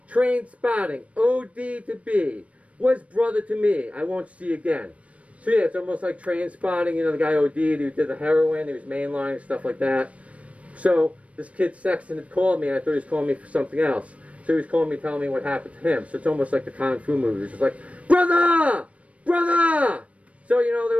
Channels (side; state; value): left; late; 0.064 ms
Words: Train Spotting. OD to B. Was brother to me. I won't see again. So yeah, it's almost like Train Spotting, you know, the guy OD'd, he did the heroin, he was mainlining, stuff like that. So this kid Sexton had called me, and I thought he was calling me for something else. So he was calling me, telling me what happened to him. So it's almost like the Kung Fu movies. It's like, brother! Brother! So, you know,